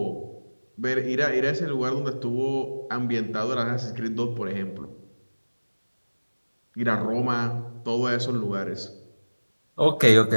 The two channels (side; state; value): both; inverted; correlation -1.00